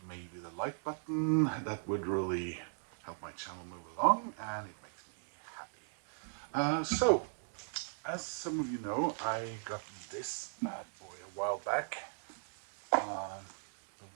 maybe the like button, that would really help my channel move along and it makes me happy. As some of you know, I got this bad boy a while back. The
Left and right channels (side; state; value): left; silent; digital silence